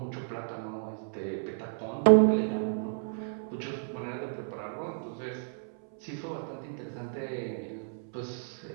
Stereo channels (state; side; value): silent; left; 56 dB below the other